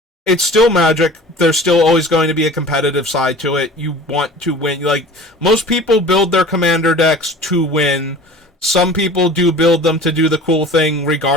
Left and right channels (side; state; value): both; normal; correlation 0.41